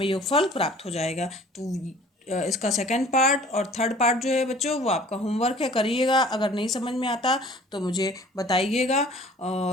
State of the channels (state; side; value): normal; both; correlation 0.50